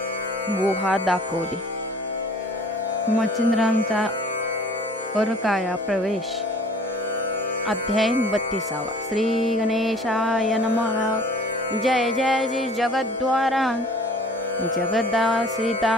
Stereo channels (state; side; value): normal; both; correlation 0.50